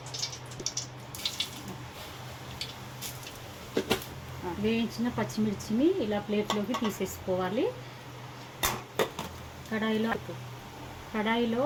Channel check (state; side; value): identical; both; correlation 1.00